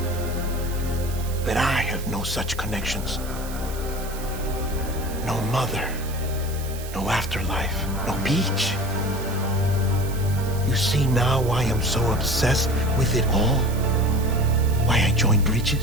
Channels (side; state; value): right; noise; hiss, 14 dB below the sound